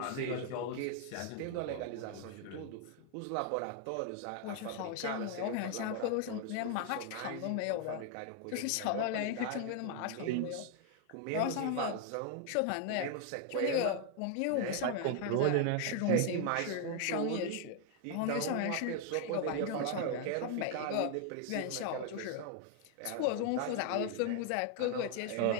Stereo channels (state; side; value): different; both; correlation 0.00